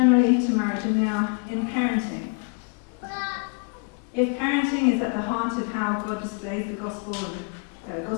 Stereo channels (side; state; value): right; quieter; 37.3 dB